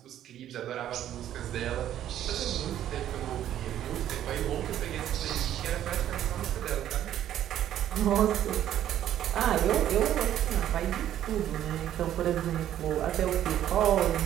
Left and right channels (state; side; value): quieter; left; 11.5 dB